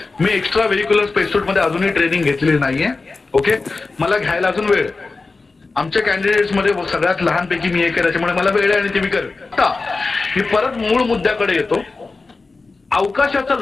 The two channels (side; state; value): right; quieter; 3.8 dB